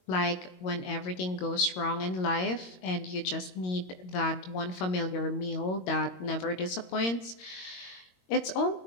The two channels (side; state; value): right; late; 22 ms